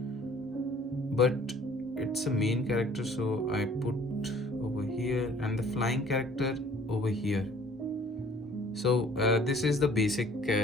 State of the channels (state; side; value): normal; both; correlation 0.54